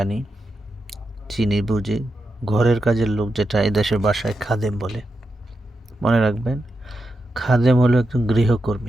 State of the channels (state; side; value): normal; both; correlation 0.87